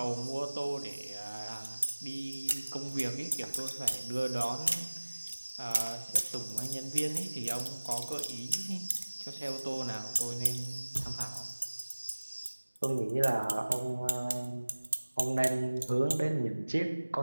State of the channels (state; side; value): inverted; both; correlation -1.00